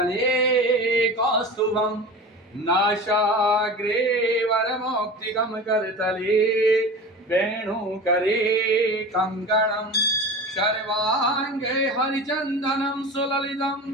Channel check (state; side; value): normal; both; correlation 0.32